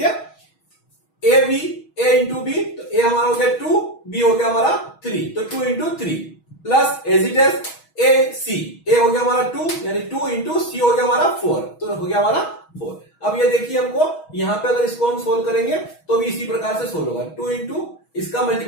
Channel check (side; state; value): right; late; 6.3 ms